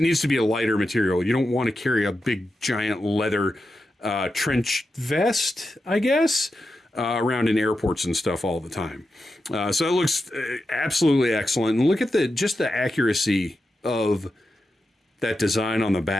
needs to be a lighter material. You don't want to carry a big giant leather trench vest, I guess, around in airports and stuff all the time. So it looks absolutely excellent. And look at the accuracy of that design on the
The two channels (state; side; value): normal; both; correlation 0.89